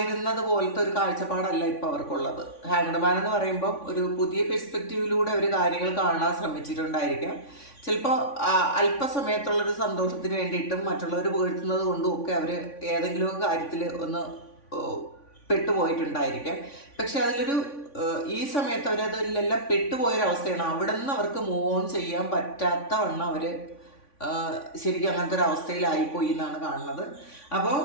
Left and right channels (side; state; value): right; late; 3.5 ms